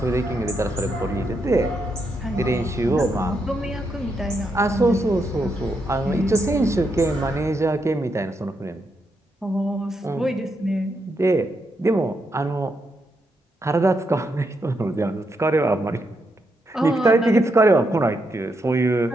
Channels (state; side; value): normal; both; correlation 0.81